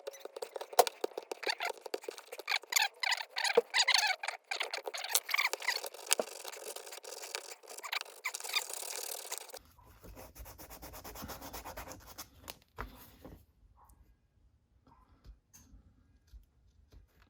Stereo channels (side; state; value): both; identical; correlation 1.00